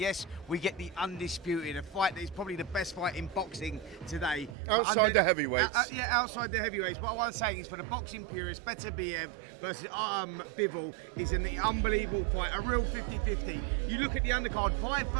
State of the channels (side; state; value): left; drops out; at 4.5 s